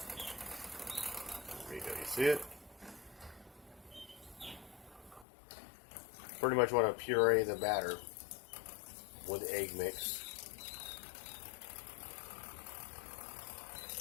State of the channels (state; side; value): drops out; right; at 5.2 s